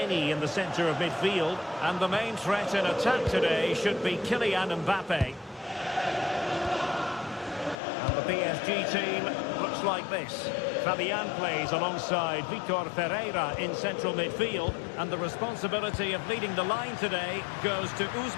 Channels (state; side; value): drops out; right; at 7.8 s